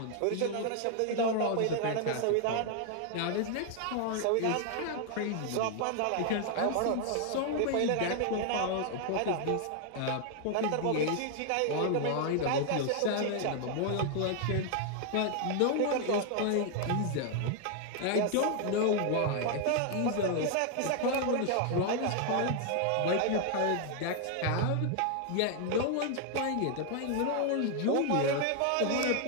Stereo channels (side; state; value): both; different; correlation 0.00